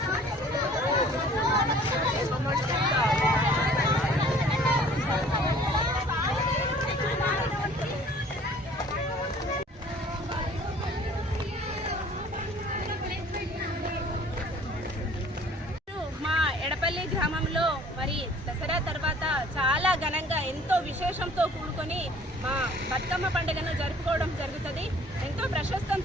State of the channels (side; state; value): both; normal; correlation 0.52